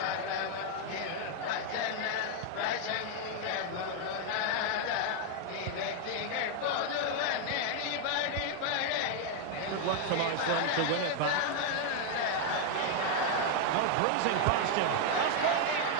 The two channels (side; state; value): both; different; correlation 0.01